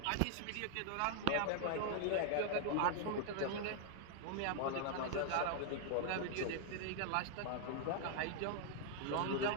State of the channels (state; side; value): different; both; correlation -0.01